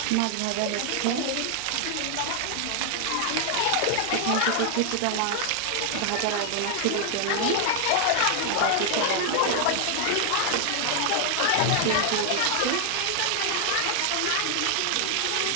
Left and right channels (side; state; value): both; different; correlation 0.00